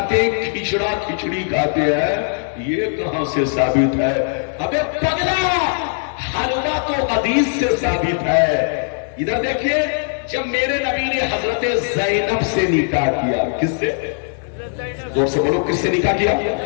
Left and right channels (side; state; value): right; silent; 66 dB below the other